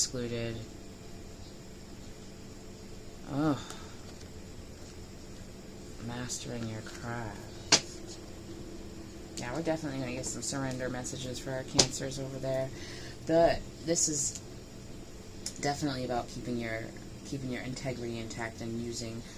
Mastering your craft. Yeah, we're definitely going to get some surrender messages for our Cancers over there. But this is definitely about keeping your integrity intact and using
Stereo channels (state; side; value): identical; both; correlation 1.00